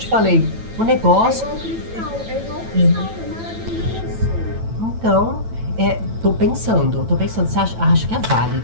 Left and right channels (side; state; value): left; late; 9.0 ms